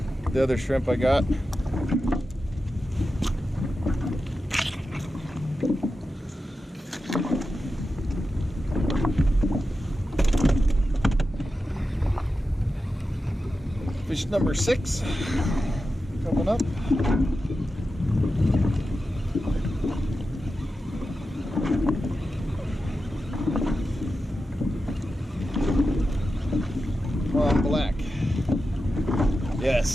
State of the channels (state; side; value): normal; both; correlation 0.91